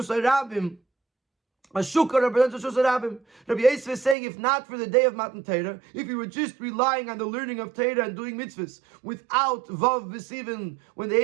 HaRabim, a shukah represents a Rishus HaRabim. Rabbi Yosef is saying, if not for the day of Matan Torah, if you were just relying on the learning of Torah and doing mitzvahs without Vav B'Sivan, when the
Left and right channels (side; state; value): left; drops out; at 4.2 s